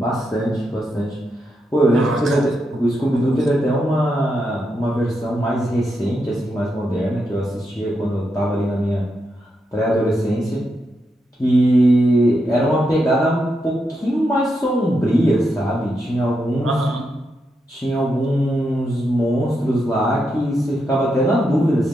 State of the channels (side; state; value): both; normal; correlation 0.83